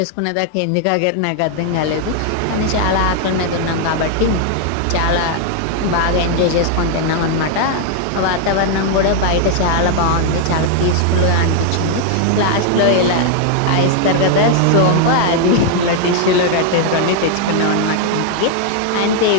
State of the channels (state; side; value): different; both; correlation 0.00